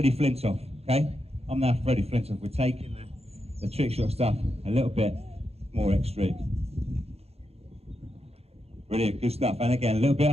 Flintoff, okay? I'm now Freddie Flintoff. We're taking the trick shot stuff a little bit more extreme. Brilliant. Good stuff. And again, a little bit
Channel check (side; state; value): left; late; 0.29 ms